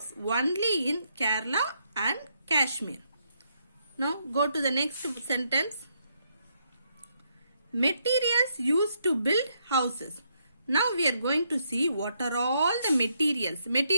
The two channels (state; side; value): inverted; both; correlation -0.76